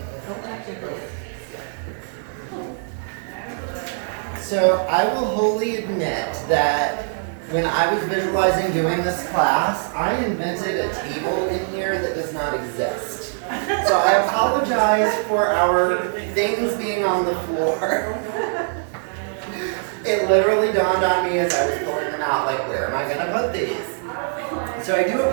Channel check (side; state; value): left; silent; digital silence